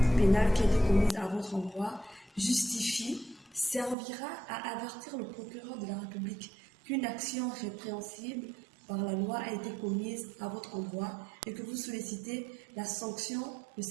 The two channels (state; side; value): drops out; left; at 4.0 s